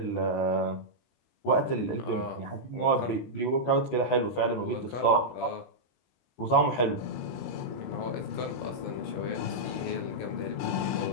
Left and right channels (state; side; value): late; right; 17 ms